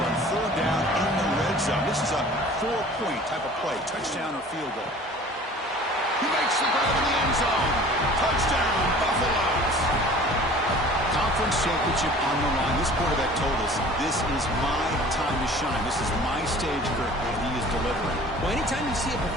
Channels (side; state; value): both; normal; correlation 0.46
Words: on third down in the red zone. This is a 4-point type of play. Touchdown or field goal. He makes the grab in the end zone. Touchdown, Buffaloes. Conference championship on the line. This quarterback told us, this is my time to shine. This is my stage, Kirk, and he is delivering. Well, anytime you see a